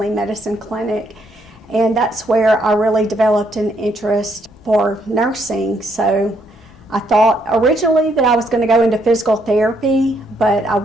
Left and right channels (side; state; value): both; normal; correlation 0.73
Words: medicine clinic, and that's where I really developed an interest for nursing. So I thought originally that I was going to go into physical therapy, but I